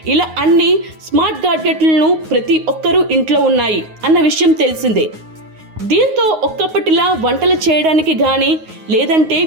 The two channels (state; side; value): late; left; 9.5 ms